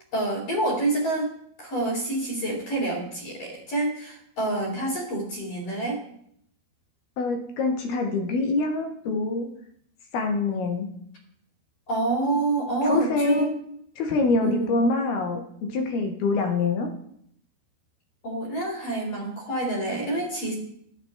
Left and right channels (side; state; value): right; late; 12 ms